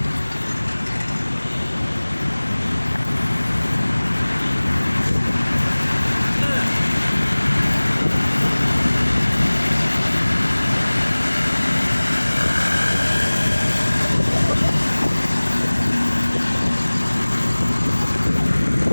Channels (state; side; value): inverted; both; correlation -1.00